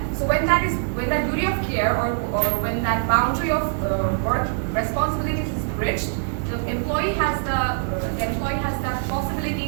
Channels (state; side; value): silent; left; digital silence